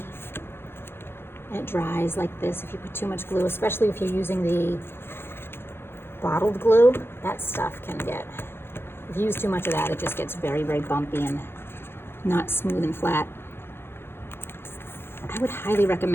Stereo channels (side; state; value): right; late; 0.11 ms